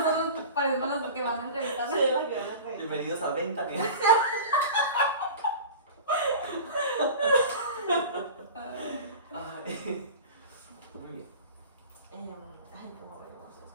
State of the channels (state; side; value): inverted; both; correlation -0.35